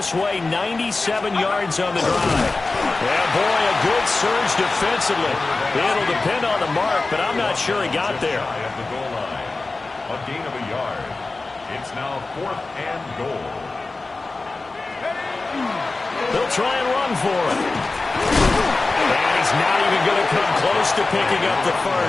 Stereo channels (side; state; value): right; quieter; 3.5 dB